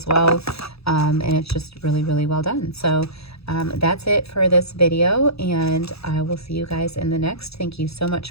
well. And it's just really, really well done. So that's it for this video, and I will see you guys in the next. Thank you so much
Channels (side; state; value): right; late; 0.78 ms